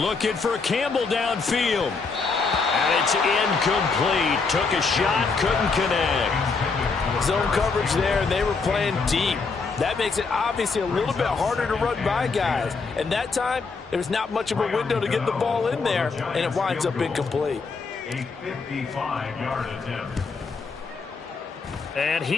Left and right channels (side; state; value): right; quieter; 4.5 dB